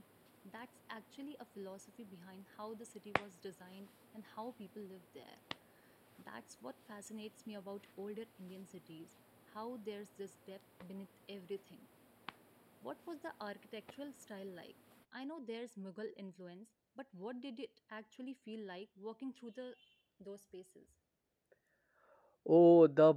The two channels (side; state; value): both; identical; correlation 1.00